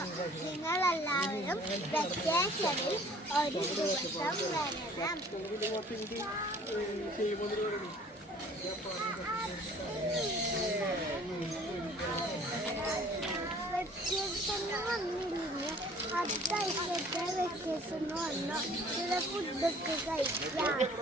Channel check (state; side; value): normal; both; correlation 0.52